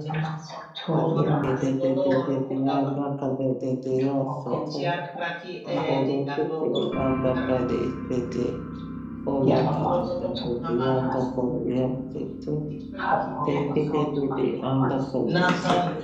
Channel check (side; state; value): both; identical; correlation 1.00